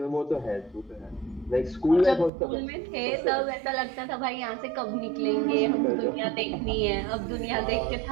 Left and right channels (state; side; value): drops out; left; at 2.3 s